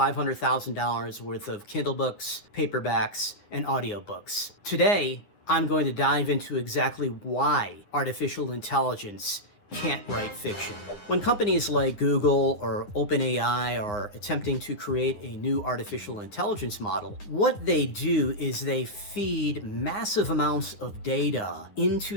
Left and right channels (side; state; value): right; late; 10 ms